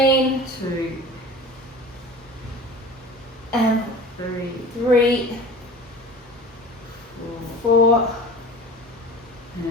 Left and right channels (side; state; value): both; normal; correlation 0.38